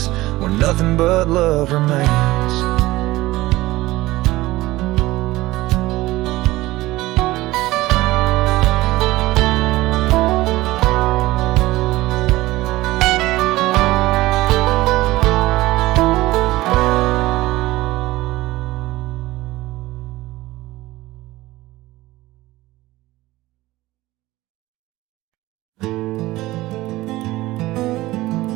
where nothing but love remains.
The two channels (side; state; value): left; quieter; 18.2 dB